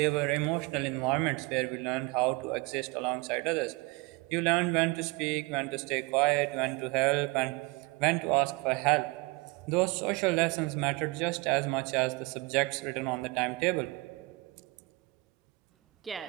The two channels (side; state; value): left; quieter; 24.9 dB